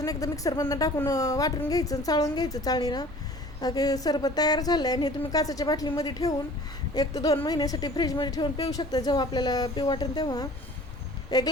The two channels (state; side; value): normal; both; correlation 0.47